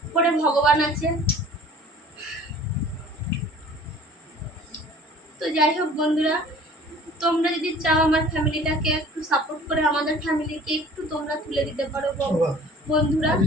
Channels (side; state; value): both; normal; correlation 0.48